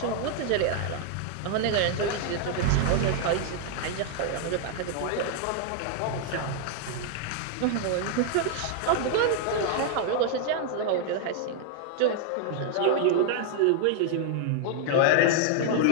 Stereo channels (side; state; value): both; different; correlation 0.00